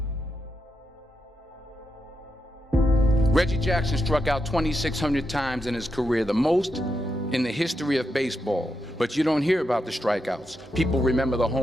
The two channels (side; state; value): both; normal; correlation 0.85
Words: Reggie Jackson struck out 2,600 times in his career, the most in the history of baseball. But you don't hear about the strikeouts. People remember the